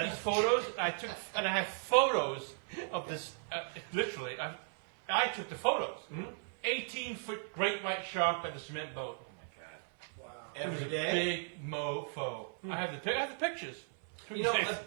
photos? I have photos of this. Literally, I took the photos. 18-foot great white shark by the cement boat. It was Every a day. big mofo. I have the pictures. You know, Yes.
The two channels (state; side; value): silent; left; 54 dB below the other